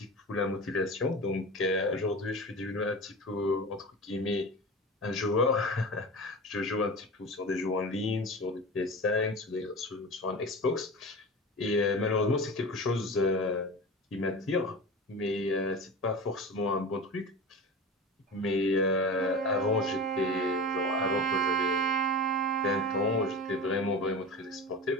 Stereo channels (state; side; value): normal; both; correlation 0.30